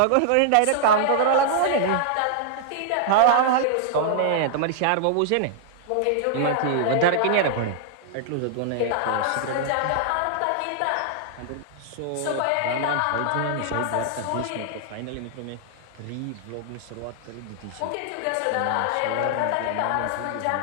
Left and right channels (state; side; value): different; both; correlation -0.01